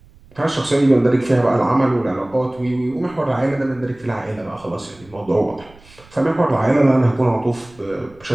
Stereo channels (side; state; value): right; noise; rumble, 26 dB below the sound